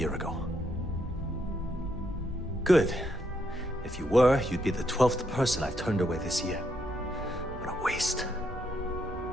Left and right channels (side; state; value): both; normal; correlation 0.76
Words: ago. Good. If you were, you'd be the 12th person I've turned away this year. What a waste.